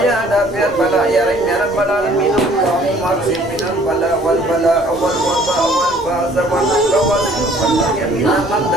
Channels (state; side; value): normal; both; correlation 0.56